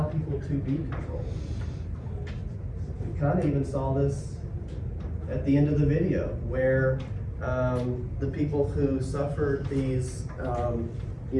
people to be controlled. We kind of even saw this at the end of the video where the people who suffered these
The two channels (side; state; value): both; identical; correlation 1.00